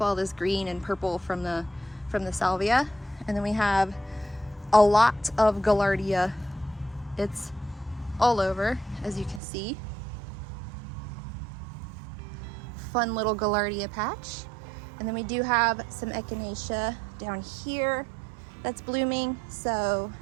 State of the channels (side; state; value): left; drops out; at 9.4 s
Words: this green and purple from the salvia. And then we have a lot of gaillardia. It's all over, as you can see. Fun little gaillardia patch. And then we do have some echinacea down here that's blooming. So